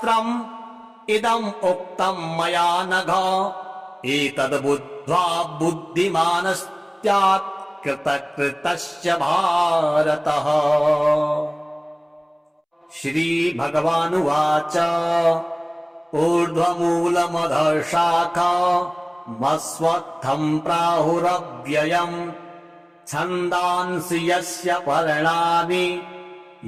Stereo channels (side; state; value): both; identical; correlation 1.00